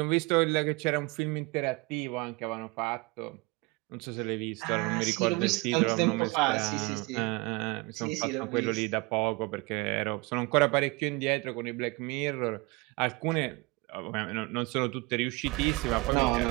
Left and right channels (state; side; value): quieter; left; 25.0 dB